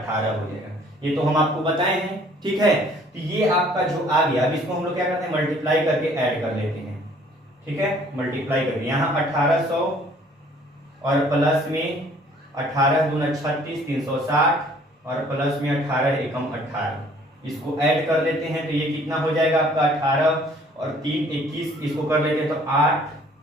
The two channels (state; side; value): normal; both; correlation 0.57